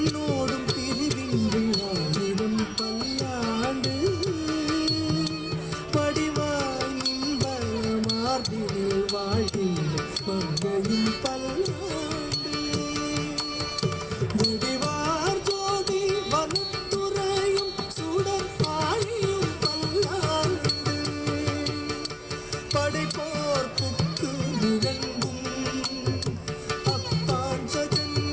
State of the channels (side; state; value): both; identical; correlation 1.00